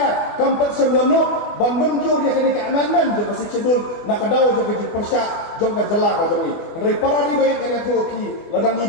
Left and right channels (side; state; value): right; late; 24 ms